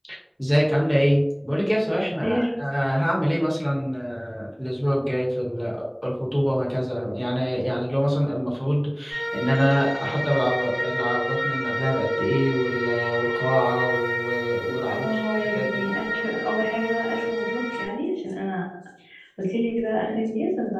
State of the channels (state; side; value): identical; both; correlation 1.00